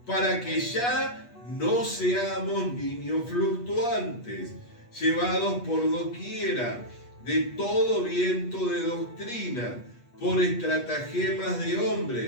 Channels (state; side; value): late; right; 8.3 ms